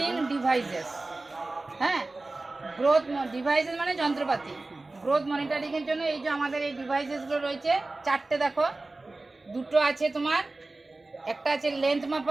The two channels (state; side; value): quieter; left; 3.2 dB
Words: ডিভাইসেস। হ্যাঁ, গ্রোথ ডিভাইসেস মানে যন্ত্রপাতি। গ্রোথ মনিটরিংয়ের জন্য এই যে আমাদের এই ডিভাইসেসগুলো রয়েছে চারটে। দেখো, দুটো আছে তোমার, একটা আছে লেন্থ